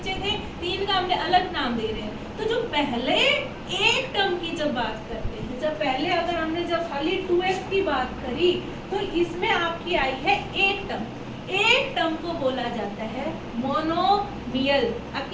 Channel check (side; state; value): both; identical; correlation 1.00